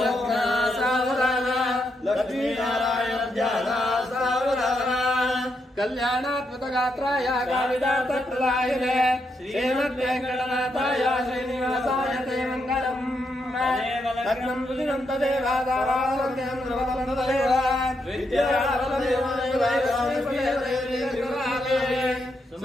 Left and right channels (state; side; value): normal; both; correlation 0.80